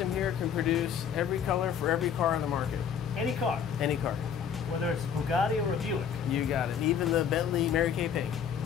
here can produce every color for every car on the market. Any car, Any car. whether it's a Bugatti or a Buick. You got it. Even the Bentley Mary Kay paint.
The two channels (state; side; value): quieter; right; 7.7 dB